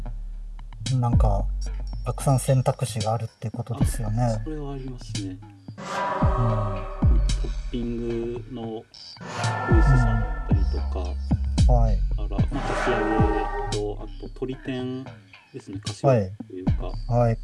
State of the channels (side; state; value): both; identical; correlation 1.00